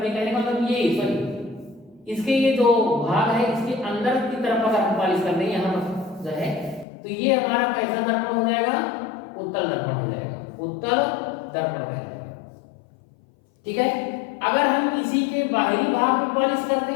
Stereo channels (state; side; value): drops out; right; at 6.9 s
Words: कहने का मतलब ये सॉरी, इसके ये जो भाग है, इसके अंदर की तरफ अगर हम पॉलिश करते हैं यहाँ जो है, तो ये हमारा कैसा दर्पण हो जाएगा, उत्तल दर्पण हो जाएगा, उत्तल दर्पण कहलाएगा। ठीक है, अगर हम इसी के बाहरी भाग में पॉलिश करते